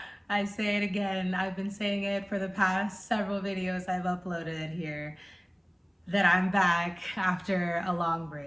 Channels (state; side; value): identical; both; correlation 1.00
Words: I say it again, I've been saying it for the past several videos I've uploaded here, that I'm back after a long